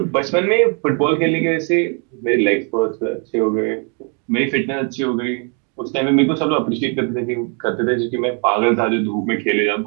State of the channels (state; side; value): quieter; left; 38.3 dB